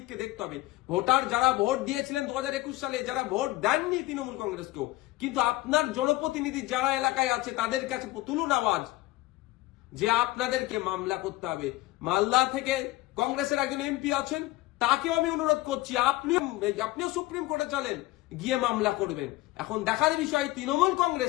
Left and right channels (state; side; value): quieter; right; 18.4 dB